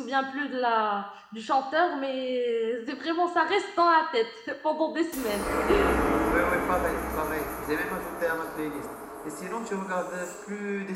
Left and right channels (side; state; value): both; identical; correlation 1.00